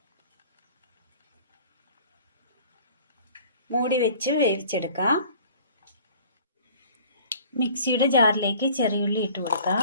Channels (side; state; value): both; inverted; correlation -0.49